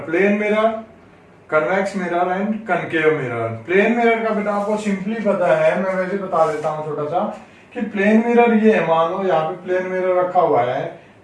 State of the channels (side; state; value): both; identical; correlation 1.00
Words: plane mirror, convex mirror and concave mirror. Plane mirror का बेटा आपको सिंपली पता है, मैं वैसे बता देता हूँ छोटा सा कि प्लेन मिरर ये है. मान लो यहाँ पे प्लेन मिरर रखा हुआ है,